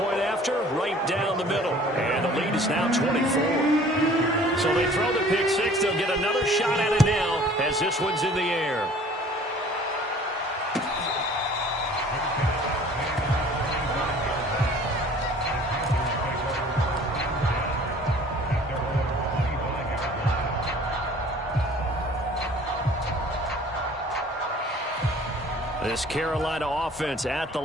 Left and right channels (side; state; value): both; normal; correlation 0.50